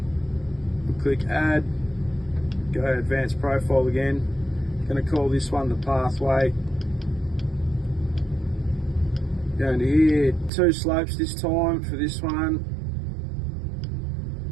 we'll click add, go to advanced profile again. Going to call this one the pathway. Go into here, 2 slopes this time for this one.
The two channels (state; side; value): drops out; left; at 10.5 s